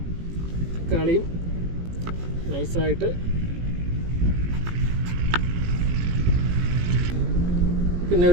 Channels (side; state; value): left; late; 18 ms